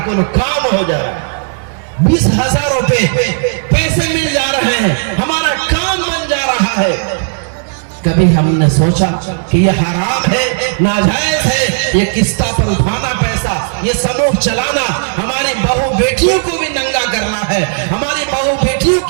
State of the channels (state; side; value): silent; left; digital silence